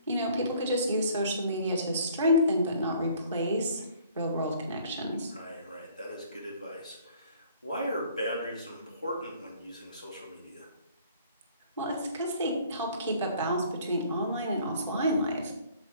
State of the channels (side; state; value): both; inverted; correlation -0.56